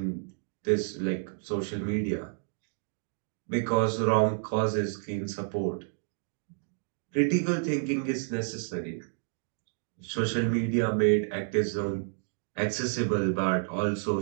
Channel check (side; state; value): left; silent; digital silence